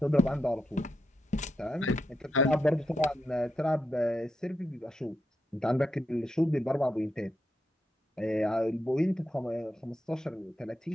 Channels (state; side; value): normal; both; correlation 0.84